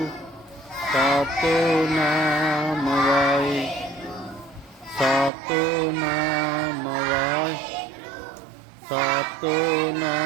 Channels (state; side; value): drops out; left; at 5.3 s